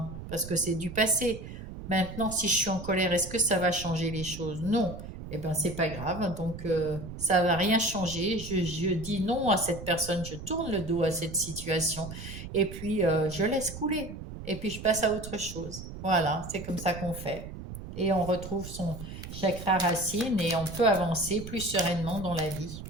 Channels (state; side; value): noise; right; rumble, 11 dB below the sound